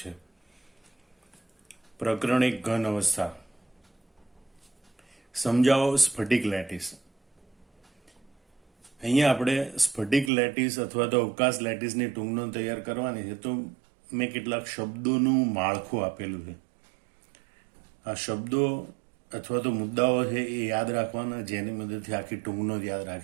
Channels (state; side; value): drops out; left; at 10.3 s